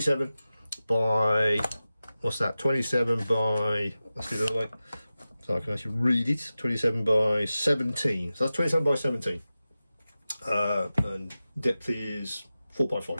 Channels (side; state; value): both; inverted; correlation -0.95